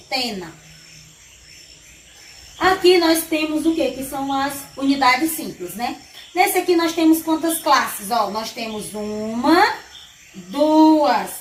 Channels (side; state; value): both; identical; correlation 1.00